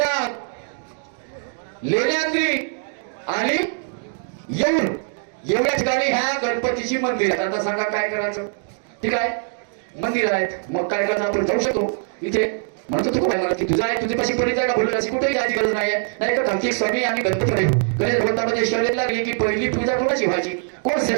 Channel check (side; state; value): left; silent; 64 dB below the other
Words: लेण्याद्री आणि येऊर एवढ्या ठिकाणी ह्या गणपतीची मंदिर आहेत आता सांगा काय करायचं ठीक आहे मंदिर आहेत मग काय करायचं आपण जाऊ शकतो इथे म्हणतो तू काय मला की तुझा आहे तुझी पाशी परिचय का बोलू अशी कुठेही जायची गरज नाहीये नाही का कार्तिक स्वामी आणि गणपती गणेश भगवंतामध्ये शर्यत लागली की पहिली पूजा कोणाची व्हायची कोण